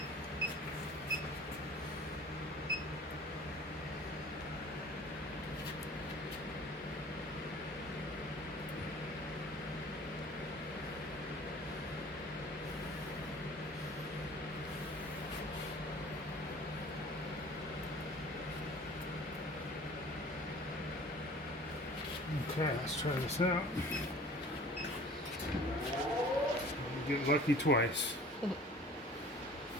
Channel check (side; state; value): both; normal; correlation 0.46